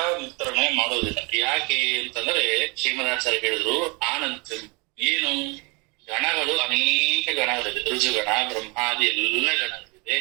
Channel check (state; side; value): quieter; left; 28.9 dB